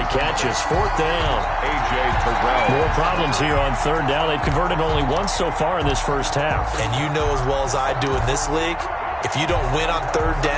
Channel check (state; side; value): identical; both; correlation 1.00